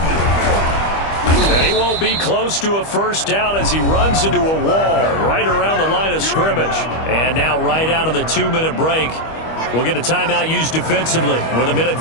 And he won't be close to a first down as he runs into a wall right around the line of scrimmage. And now right out of the 2-minute break, we'll get a timeout used defensively with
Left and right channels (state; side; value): late; right; 25 ms